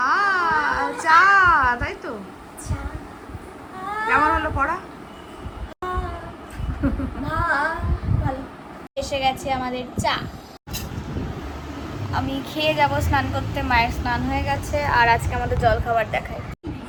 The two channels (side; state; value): both; identical; correlation 1.00